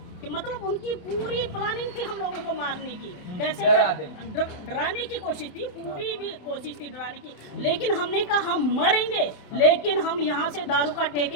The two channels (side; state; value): right; late; 27 ms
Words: कि मतलब उनकी पूरी प्लानिंग थी हम लोगों को मारने की, कैसे डराने की कोशिश थी, पूरी भी कोशिश थी डराने की। लेकिन हमने कहा हम मरेंगे लेकिन हम यहाँ से दारू का